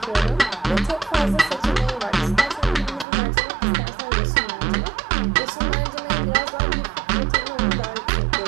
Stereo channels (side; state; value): left; drops out; at 3.1 s